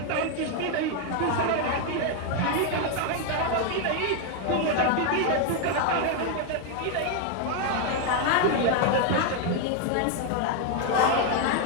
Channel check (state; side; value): different; both; correlation 0.01